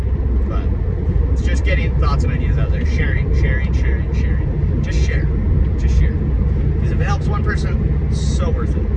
it's just getting thoughts and ideas out there. Sharing. Just share. Because if it helps one person, it's so worth it.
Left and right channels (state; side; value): identical; both; correlation 1.00